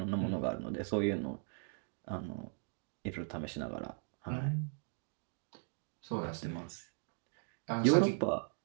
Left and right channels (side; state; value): left; silent; 52 dB below the other